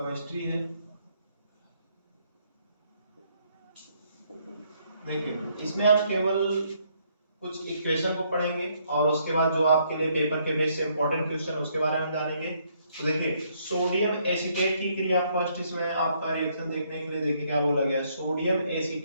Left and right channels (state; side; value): inverted; both; correlation -0.70